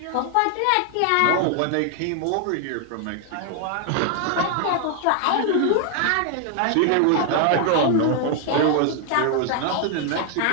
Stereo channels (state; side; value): different; both; correlation 0.00